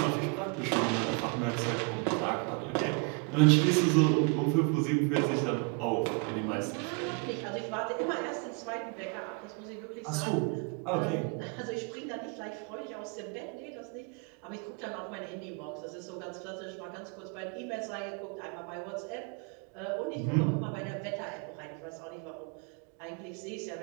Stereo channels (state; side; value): quieter; left; 34.8 dB